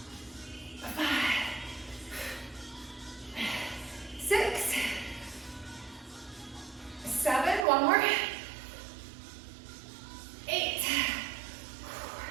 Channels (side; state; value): left; drops out; at 7.7 s